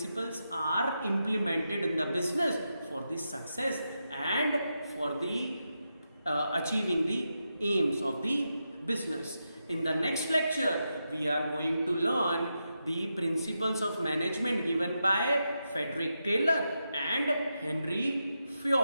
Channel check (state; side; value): inverted; both; correlation -0.87